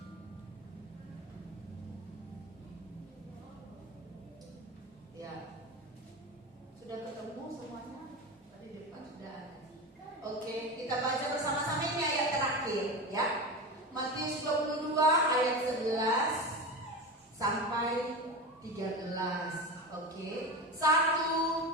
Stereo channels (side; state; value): both; normal; correlation 0.25